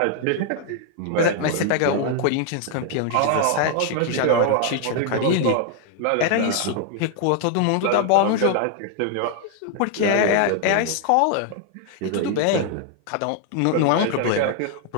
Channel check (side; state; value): both; different; correlation 0.00